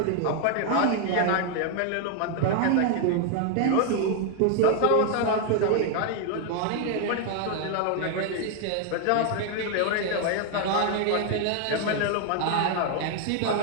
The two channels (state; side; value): different; both; correlation 0.00